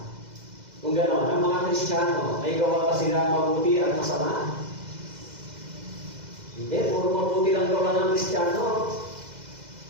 Kung gano'n, ang mga Kristiyano, may gawa pa sila mabuti at masama? Hindi, puro mabuti lang gawa ng Kristiyano.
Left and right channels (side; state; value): left; late; 2.0 ms